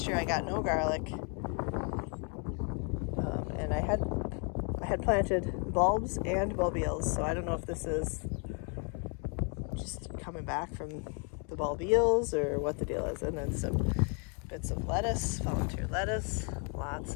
year I got no garlic. And I had planted bulbs and bulbils, so I don't know if this is just coming back from the bulbils or what the deal is. And then some bits of lettuce, volunteer lettuce,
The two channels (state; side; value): quieter; right; 38.3 dB